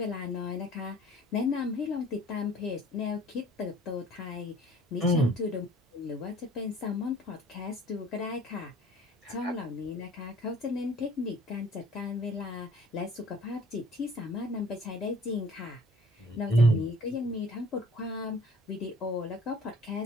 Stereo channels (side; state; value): both; normal; correlation 0.52